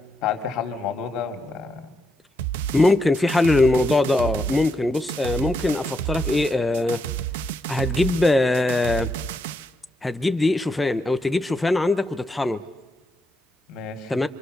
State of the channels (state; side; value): normal; both; correlation 0.82